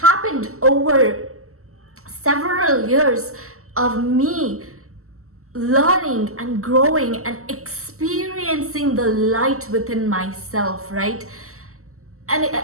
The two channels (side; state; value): left; late; 0.63 ms